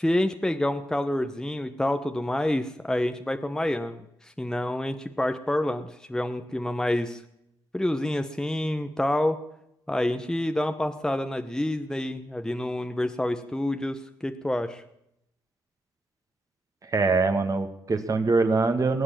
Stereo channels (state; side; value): normal; both; correlation 0.89